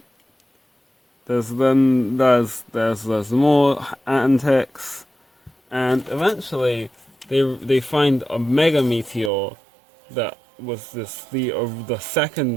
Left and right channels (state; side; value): drops out; left; at 9.3 s